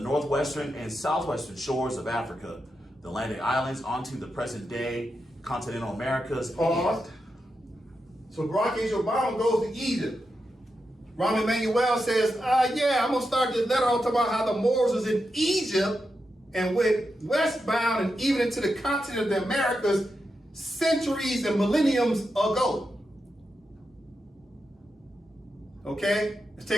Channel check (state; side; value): normal; both; correlation 0.87